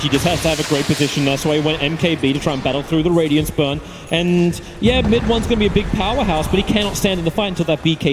He just has to have a great position. That's why he went MKB to try and battle through the Radiance Burn. And yeah, mid one's going to be a big powerhouse, but he cannot stand in the fight until that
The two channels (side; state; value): both; identical; correlation 1.00